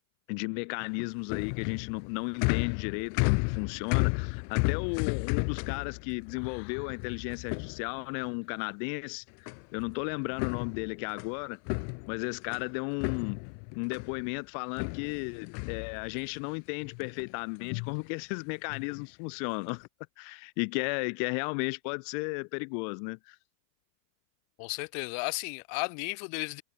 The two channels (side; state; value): right; silent; 55 dB below the other